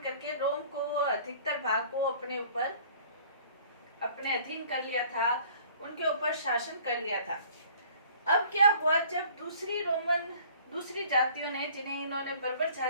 करके रोम को, अधिकतर भाग को अपने ऊपर, अपने अधीन कर लिया था, उनके ऊपर शासन कर लिया था। अब क्या हुआ, जब दूसरी जातियों ने, जिन्हें इन्होंने बर्बर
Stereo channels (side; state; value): both; inverted; correlation -0.52